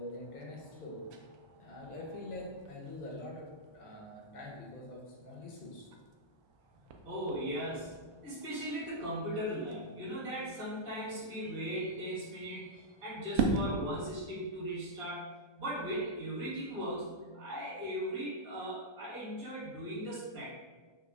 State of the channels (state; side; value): late; right; 1.3 ms